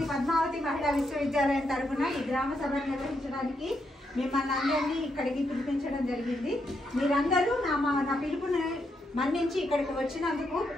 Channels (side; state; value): both; normal; correlation 0.80